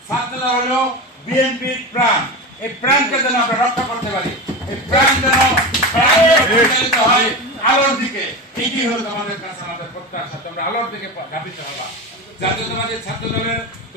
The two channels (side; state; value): both; normal; correlation 0.23